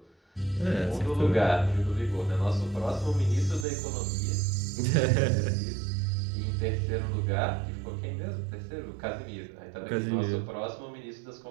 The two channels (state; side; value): drops out; left; at 3.7 s